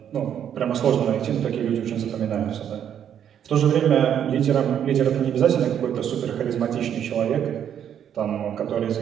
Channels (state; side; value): quieter; left; 9.2 dB